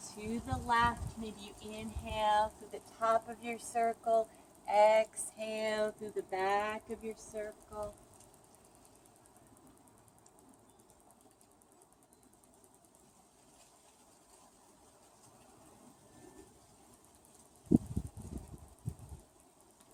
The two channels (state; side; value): identical; both; correlation 1.00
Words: to the left. Maybe you inhale through the top of your circle, exhale through the back of your circle.